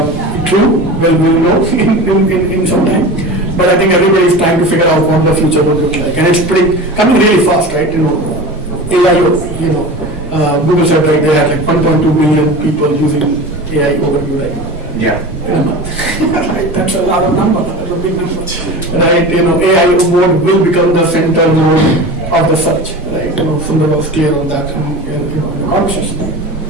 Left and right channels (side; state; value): both; normal; correlation 0.32